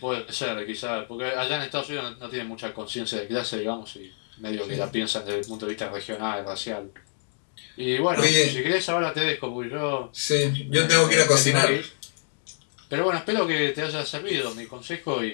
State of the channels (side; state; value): right; silent; digital silence